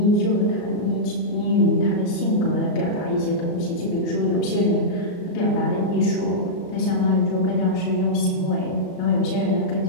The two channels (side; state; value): right; late; 34 ms